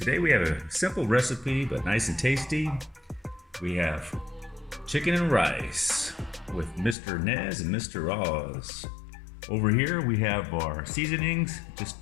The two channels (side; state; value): right; drops out; at 7.0 s